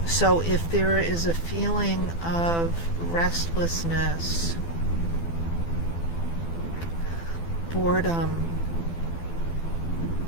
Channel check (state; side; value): late; right; 12 ms